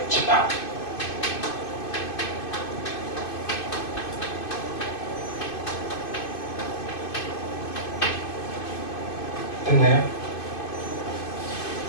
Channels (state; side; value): late; right; 2.5 ms